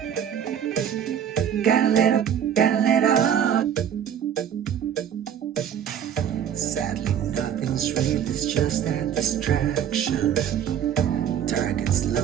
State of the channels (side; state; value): left; quieter; 9.1 dB